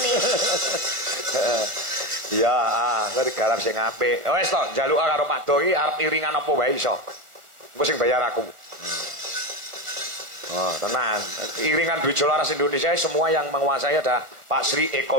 Iya, kowe digarap sing apik. Wis to, njaluk karo Pak Do iki arep iringan apa wae iso. Engko sing bayar aku. Oh, tenang. Iringan Dwi Jolaras Indonesia semua yang menguasai ada Pak Sri Eko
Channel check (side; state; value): left; late; 1.4 ms